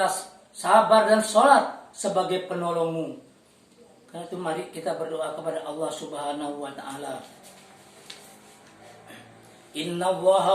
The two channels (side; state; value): both; identical; correlation 1.00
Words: sabar dan salat sebagai penolongmu. Karena itu mari kita berdoa kepada Allah Subhanahu wa Ta'ala. Inna Allaha